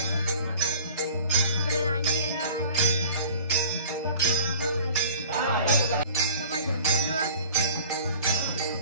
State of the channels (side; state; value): both; inverted; correlation -0.43